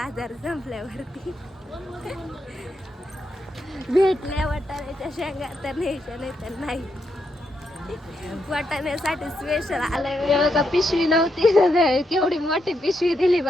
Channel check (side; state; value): both; normal; correlation 0.81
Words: संपल्यावरती. भेटल्या वाटाण्याच्या शेंगा तर न्यायच्या नाही तर नाही. वाटाण्यासाठी स्पेशल आलंय बघा. पिशवी नव्हती, केवढी मोठी पिशवी दिली